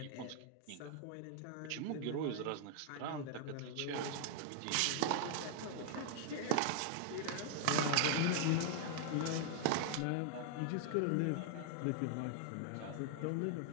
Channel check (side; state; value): both; different; correlation 0.00